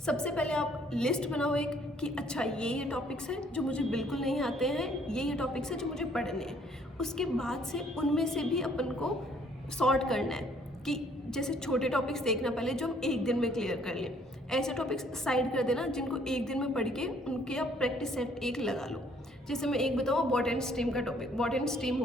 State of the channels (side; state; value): both; normal; correlation 0.62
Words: पहले आप लिस्ट बनाओ एक कि अच्छा ये टॉपिक्स हैं जो मुझे बिल्कुल नहीं आते हैं, ये टॉपिक्स हैं जो मुझे पढ़ने हैं। उसके बाद से उनमें से भी अपन को सॉर्ट करना है कि जैसे छोटे टॉपिक्स देखना पहले जो हम एक दिन में क्लियर कर लें, ऐसे टॉपिक्स साइड कर देना जिनको एक दिन में पढ़ के उनके आप प्रैक्टिस सेट एक लगा लो। जैसे मैं एक बताऊँ, बॉट एंड स्ट्रीम का टॉपिक, बॉट एंड स्ट्रीम